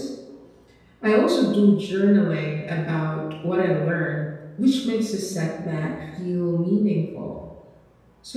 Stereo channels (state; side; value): identical; both; correlation 1.00